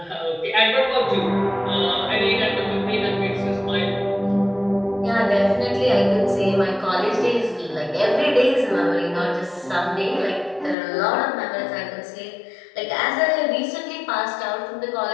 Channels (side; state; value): right; drops out; at 10.8 s